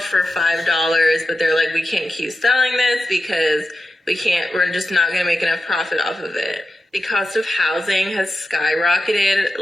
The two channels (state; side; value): normal; both; correlation 0.91